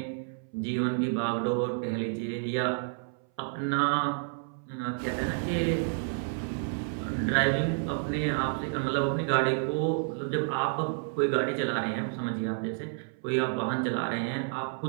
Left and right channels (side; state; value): left; silent; 58 dB below the other